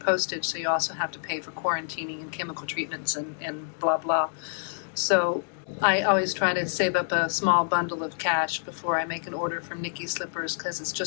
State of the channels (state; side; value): silent; right; digital silence